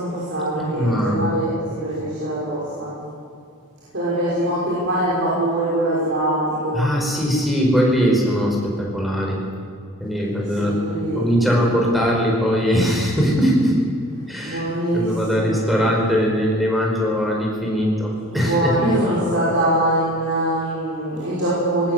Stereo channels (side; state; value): both; normal; correlation 0.47